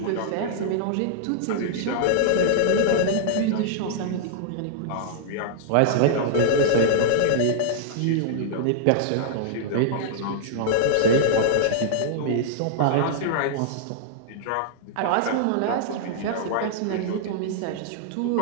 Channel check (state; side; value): different; both; correlation -0.01